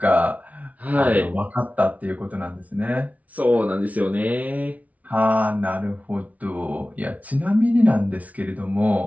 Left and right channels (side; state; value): left; late; 0.070 ms